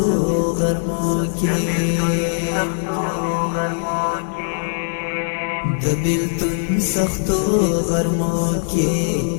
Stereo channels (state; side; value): silent; right; digital silence